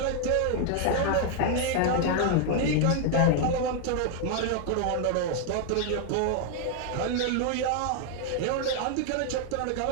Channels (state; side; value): different; both; correlation 0.00